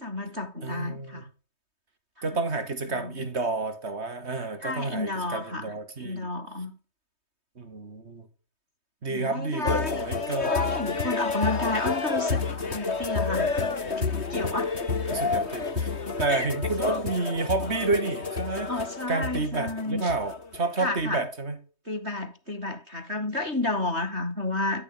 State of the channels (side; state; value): left; late; 3.2 ms